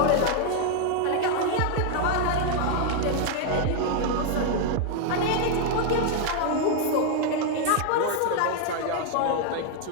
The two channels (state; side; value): different; both; correlation 0.00